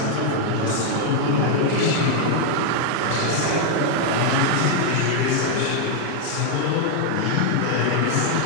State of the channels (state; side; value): different; both; correlation 0.00